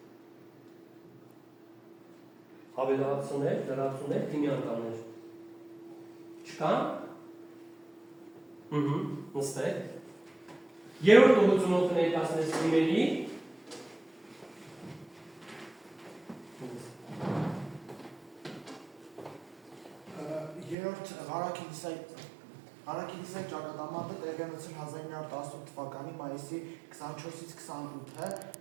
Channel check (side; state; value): left; drops out; at 20.8 s